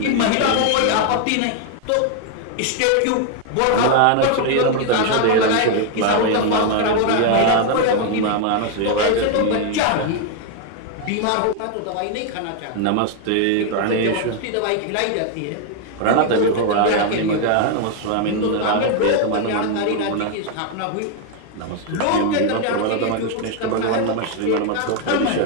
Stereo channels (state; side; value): different; both; correlation 0.01